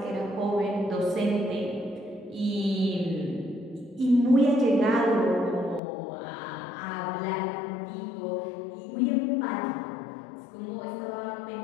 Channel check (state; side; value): drops out; right; at 5.8 s